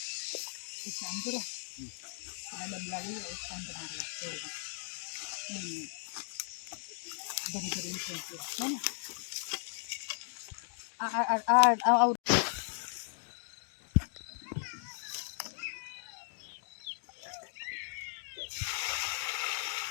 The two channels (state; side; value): silent; right; digital silence